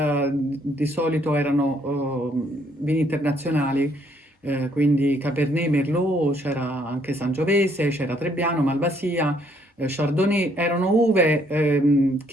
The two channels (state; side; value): normal; both; correlation 0.68